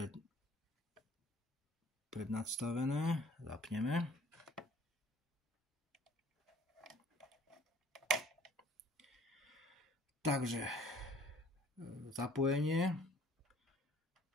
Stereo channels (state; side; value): normal; both; correlation 0.54